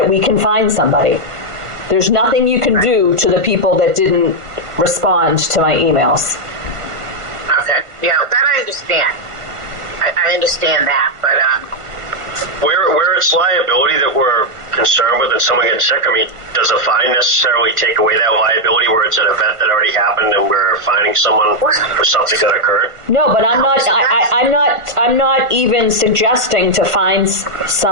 we can find somebody. There's nothing you can do to the people that didn't respond to my emails. Okay, yeah, that I understand. I understand that, but Where it's liability that we're concerned with and someone gets sick, I mean, does a fine necessarily take away that liability where it's an event that already happened and we're fining someone for something that occurred? No, but I'm not. I'm not even suggesting to fine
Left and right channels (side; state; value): left; late; 1.5 ms